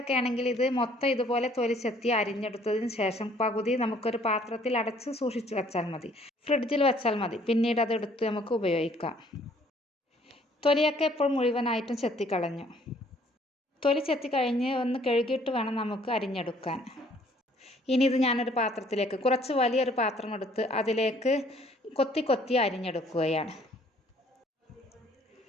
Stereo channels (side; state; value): both; normal; correlation 0.60